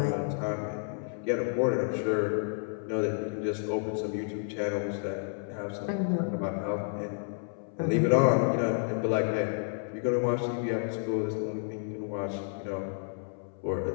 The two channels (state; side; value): silent; right; 57 dB below the other